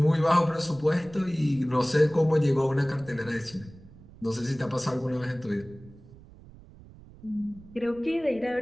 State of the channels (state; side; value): noise; right; rumble, 21 dB below the sound